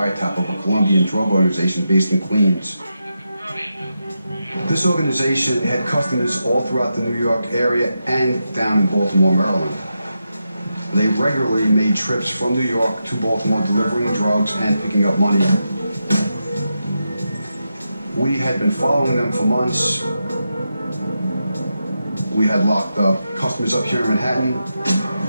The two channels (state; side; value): inverted; both; correlation -0.87